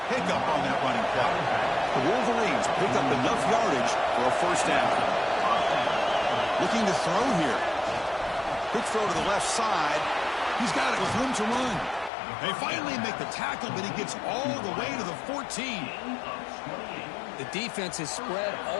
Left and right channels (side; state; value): right; drops out; at 12.1 s